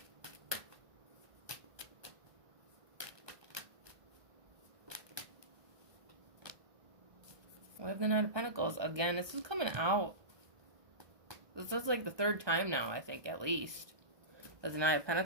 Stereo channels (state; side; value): late; left; 1.2 ms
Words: We have the Nine of Pentacles. Again, this is coming out. This is like the third time now, I think, at least, that the Nine of